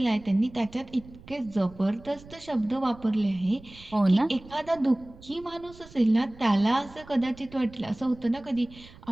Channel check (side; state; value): right; noise; rumble, 21 dB below the sound